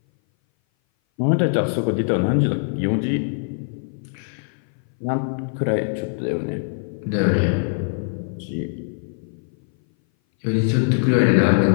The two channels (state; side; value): silent; right; 59 dB below the other